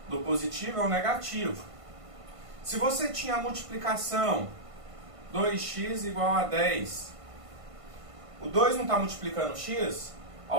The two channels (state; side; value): late; left; 1.5 ms